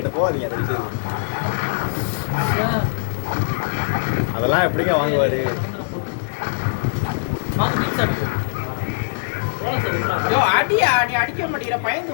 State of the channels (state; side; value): silent; right; digital silence